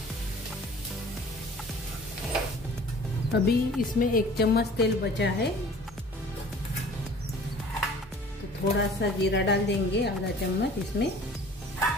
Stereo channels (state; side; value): normal; both; correlation 0.48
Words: अभी इसमें 1 चम्मच तेल बचा है, तो थोड़ा सा जीरा डाल देंगे, आधा चम्मच। इसमें